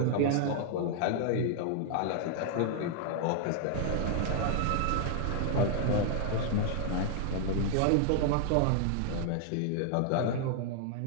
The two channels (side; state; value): both; different; correlation 0.00